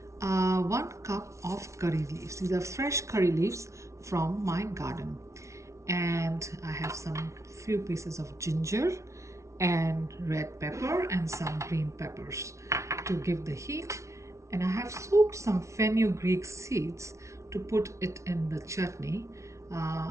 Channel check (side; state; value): left; late; 0.14 ms